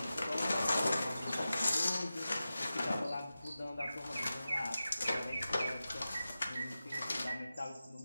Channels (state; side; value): inverted; both; correlation -0.93